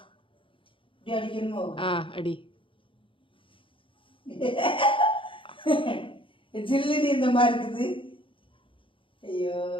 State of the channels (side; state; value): right; late; 0.25 ms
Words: இப்படி அடிக்கணுமோ? அடி. ஜில்லுன்னு இந்த மாதிரி இருக்குது. ஐயோ